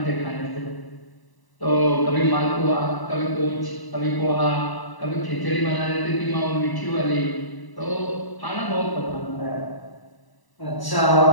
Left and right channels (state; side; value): late; right; 1.0 ms